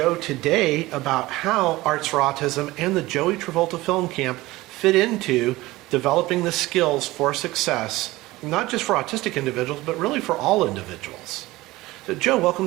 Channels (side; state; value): left; quieter; 19.0 dB